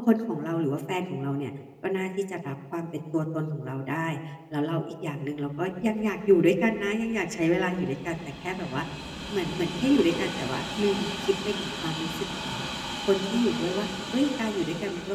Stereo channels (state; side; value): identical; both; correlation 1.00